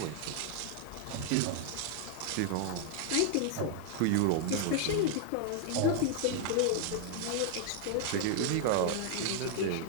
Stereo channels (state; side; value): different; both; correlation 0.00